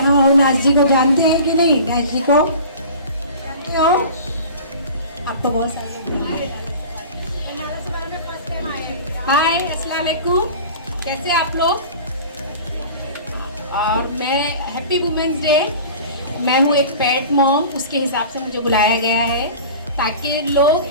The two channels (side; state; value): both; inverted; correlation -0.39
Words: और नाज जी को जानते हैं कि नहीं? नाज जी को जानते हो? आप तो बहुत सारे हाय, अस्सलाम वालेकुम, कैसे आप लोग? मैं हैप्पी वुमेंस डे। मैं हूँ एक पैट मॉम, उसके हिसाब से मुझे बुलाया गया है ताकि